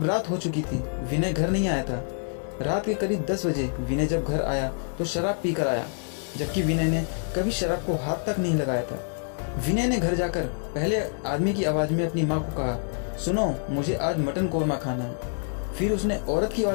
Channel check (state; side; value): silent; right; 60 dB below the other